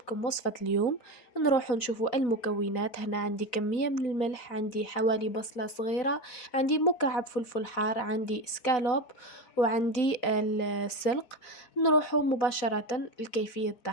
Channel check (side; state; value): right; late; 4.3 ms